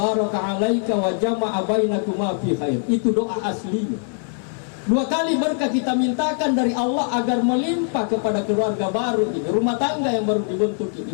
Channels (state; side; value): silent; right; 55 dB below the other